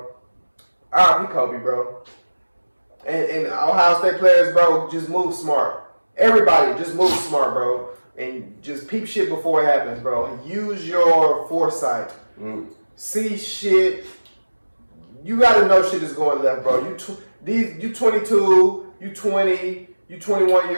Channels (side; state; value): both; inverted; correlation -1.00